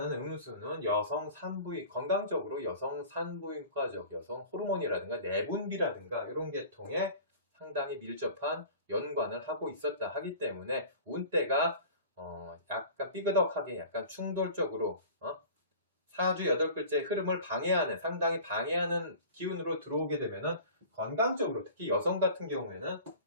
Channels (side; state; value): both; inverted; correlation -0.41